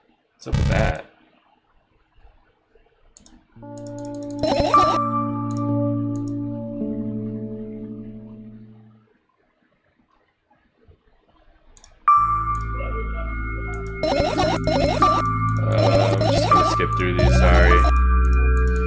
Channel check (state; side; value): identical; both; correlation 1.00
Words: What's up with that? I'm just gonna skip through these,